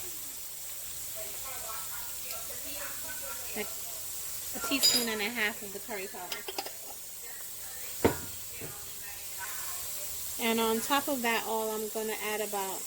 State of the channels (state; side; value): noise; left; rumble, 24 dB below the sound